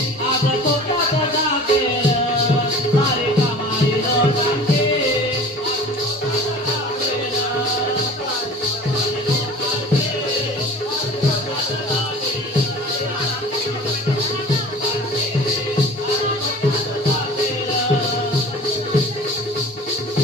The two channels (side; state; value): both; normal; correlation 0.42